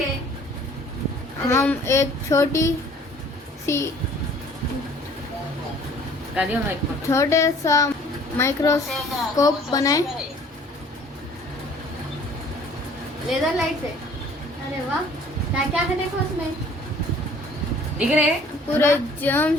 हम एक छोटी सी छोटे सा माइक्रोस्कोप बनाए लेजर लाइट से। अरे वाह, क्या क्या है देखो उसमें, दिख रहे पूरे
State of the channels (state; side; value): normal; both; correlation 0.54